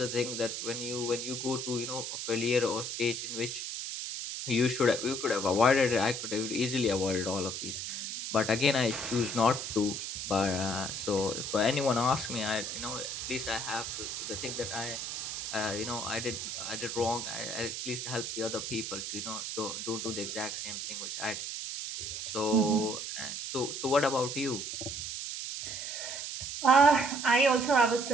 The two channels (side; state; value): right; noise; hiss, 5 dB below the sound